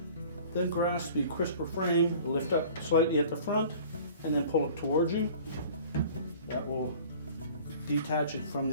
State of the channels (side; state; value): both; inverted; correlation -0.46